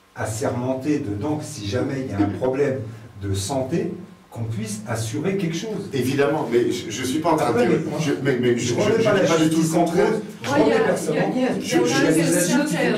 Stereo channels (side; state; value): both; identical; correlation 1.00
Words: assermentées dedans, si jamais il y a un problème de santé, qu'on puisse assurer quelque chose. Évidemment, mais je ne suis pas en train de dire... Je ne remets pas du tout le contraire. Je remets personne. Il faut